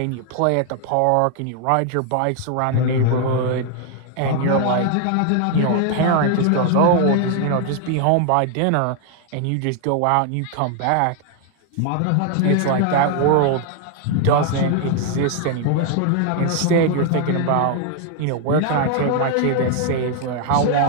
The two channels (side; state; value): both; different; correlation 0.00